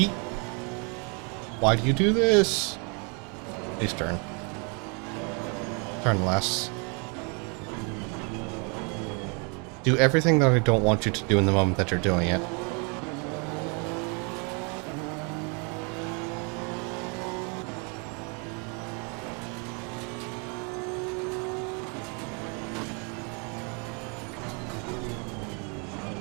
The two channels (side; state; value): left; quieter; 34.9 dB